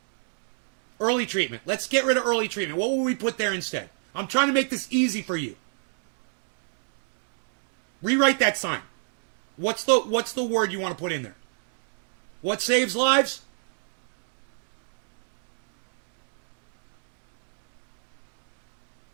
Early treatment. Let's get rid of early treatment. What will we put there instead? I'm trying to make this easy for you. Rewrite that sign. What's the word you want to put in there? What saves lives?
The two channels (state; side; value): silent; left; 59 dB below the other